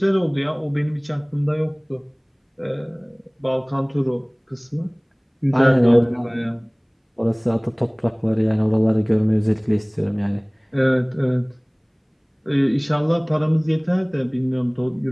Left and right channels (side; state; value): both; identical; correlation 1.00